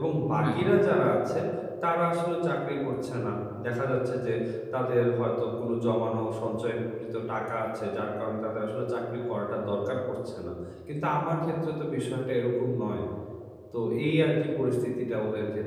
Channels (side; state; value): both; identical; correlation 1.00